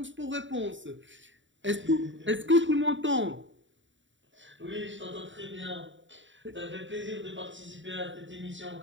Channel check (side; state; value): left; late; 0.55 ms